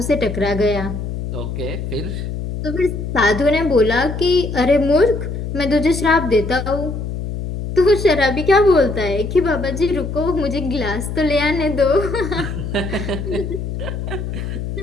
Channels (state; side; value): noise; left; hum, 5 dB below the sound